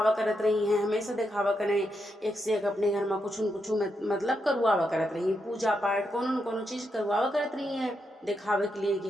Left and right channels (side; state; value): both; normal; correlation 0.83